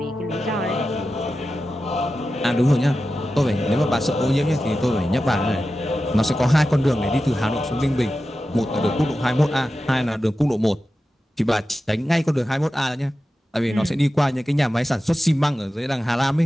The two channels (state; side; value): normal; both; correlation 0.93